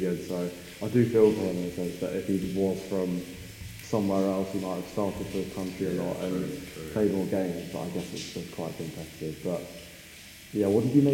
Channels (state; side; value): identical; both; correlation 1.00